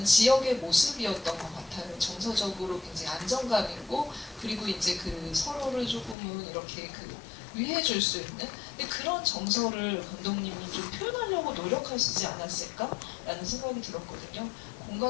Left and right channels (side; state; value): right; drops out; at 6.2 s